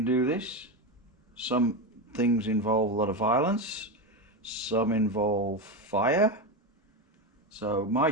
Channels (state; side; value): normal; both; correlation 0.15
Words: do this. Some things involve a lot of violence, some involve fire. So, my